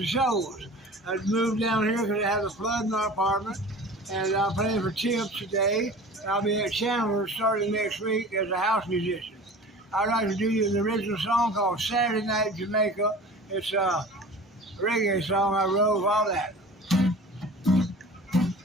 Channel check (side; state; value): both; normal; correlation 0.40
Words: shows. I moved down here because I had a flood in my apartment, and I'm playing for Tips today. I'll be at Chandler starting next week as a house musician. I'd like to do you an original song called Saturday Night Jamaica. It's a reggae song I wrote all that.